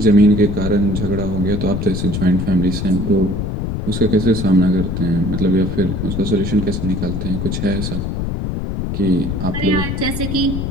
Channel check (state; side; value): noise; left; rumble, 3 dB below the sound